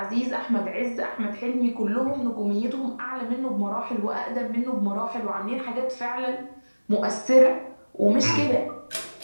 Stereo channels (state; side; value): inverted; both; correlation -1.00